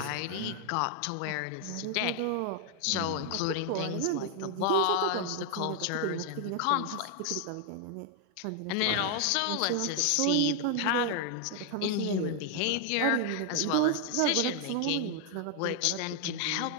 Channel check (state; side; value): different; both; correlation 0.00